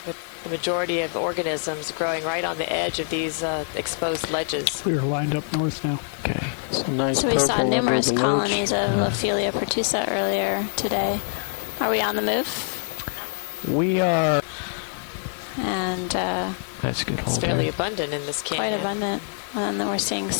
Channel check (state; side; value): silent; right; 59 dB below the other